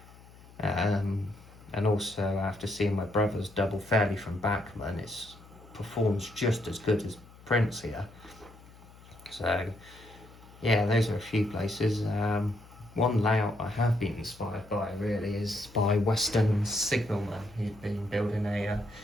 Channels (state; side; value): noise; left; hum, 22 dB below the sound